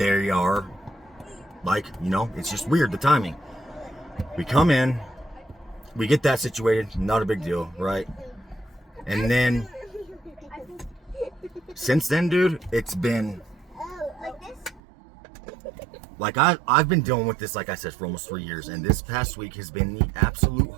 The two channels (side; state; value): left; drops out; at 14.8 s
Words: are like, you know, it's just weird, the timing. We come in, we get that situated, not a big deal, right? And then, since then, dude, it's been, like, I've been dealing with this, like I said, for almost 3 years, and this past week has been the absolute